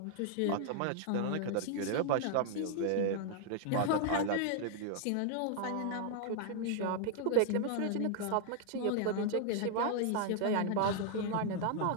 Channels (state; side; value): different; both; correlation 0.00